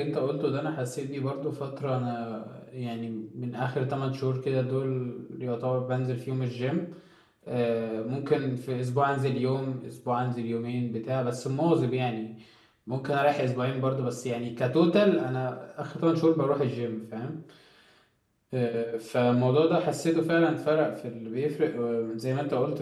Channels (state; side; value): identical; both; correlation 1.00